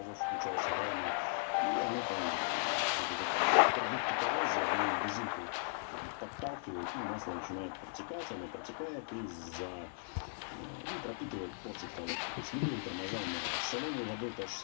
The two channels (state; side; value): silent; right; digital silence